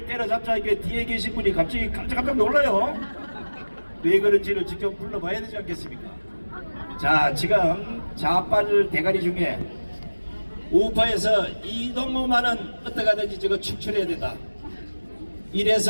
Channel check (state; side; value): inverted; both; correlation -1.00